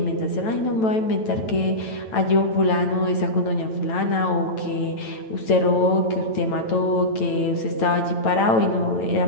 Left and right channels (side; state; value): right; late; 9.1 ms